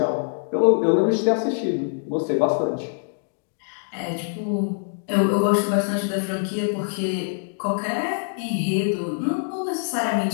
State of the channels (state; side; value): silent; right; digital silence